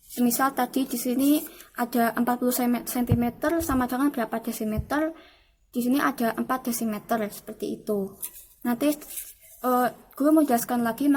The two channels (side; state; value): both; identical; correlation 1.00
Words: Misal tadi di sini ada 40 cm sama dengan berapa desimeter. Di sini ada 4 desimeter, seperti itu. Nanti guru menjelaskan lagi